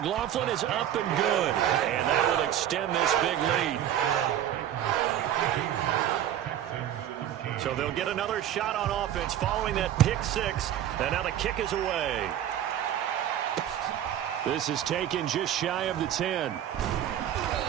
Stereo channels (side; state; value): left; quieter; 11.0 dB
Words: is up and good. And that will extend this big lead. So they'll get another shot on offense following that pick 6. And now the kick is away. This is taken just shy of the 10.